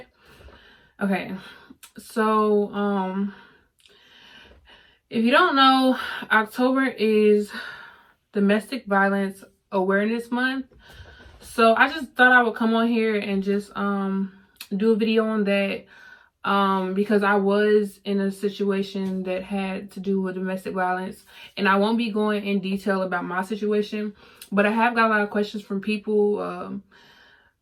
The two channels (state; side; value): identical; both; correlation 1.00